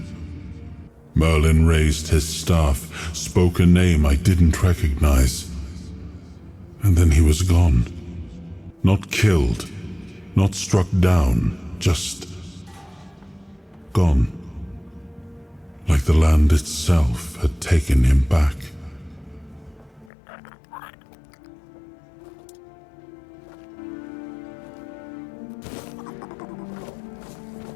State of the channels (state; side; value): drops out; right; at 20.1 s